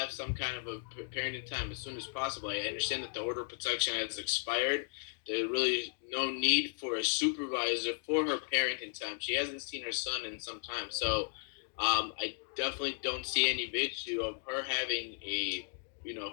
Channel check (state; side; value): silent; right; 54 dB below the other